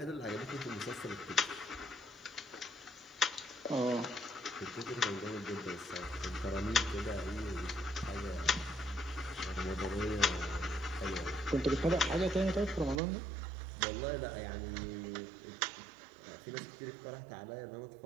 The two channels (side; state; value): left; drops out; at 13.0 s